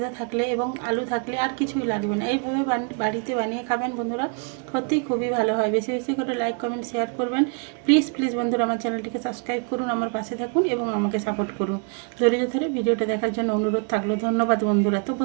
থাকলে এবং আলু থাকলে আর কিছুই লাগবে না, এইভাবে বাড়িতে বানিয়ে খাবেন বন্ধুরা, সত্যিই খুবই ভালো হয়। বেশি বেশি করে লাইক কমেন্ট শেয়ার করবেন। প্লিজ বন্ধুরা আমার চ্যানেলটিকে সাবস্ক্রাইব করুন, আমার পাশে থাকুন এবং আমাকে সাপোর্ট করুন। ধৈর্য ধরে ভিডিওটা দেখার জন্য অনুরোধ থাকলো। ধন্যবাদ বন্ধুরা। তো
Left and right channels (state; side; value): quieter; left; 39.7 dB